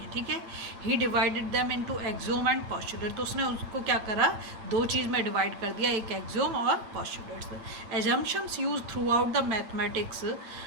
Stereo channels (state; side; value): late; left; 9.2 ms